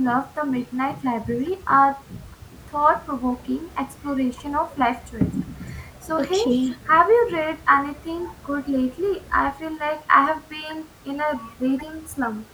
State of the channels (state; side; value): identical; both; correlation 1.00